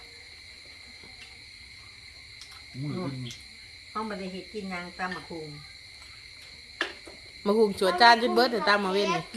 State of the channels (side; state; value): both; identical; correlation 1.00